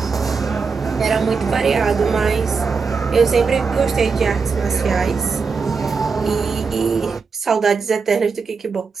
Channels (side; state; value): left; quieter; 5.1 dB